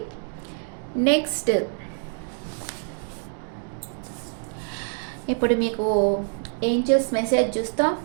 నెక్స్ట్ ఇప్పుడు మీకు ఏంజల్స్ మెసేజ్ చూస్తాం,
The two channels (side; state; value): left; silent; 61 dB below the other